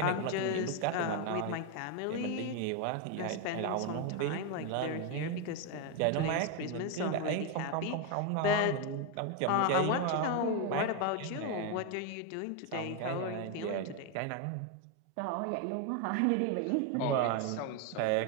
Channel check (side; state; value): both; different; correlation 0.01